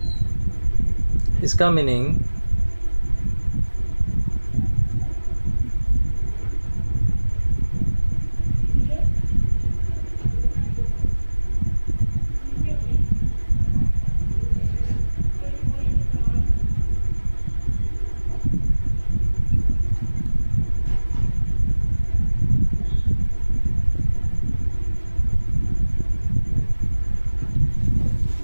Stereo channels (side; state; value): both; inverted; correlation -1.00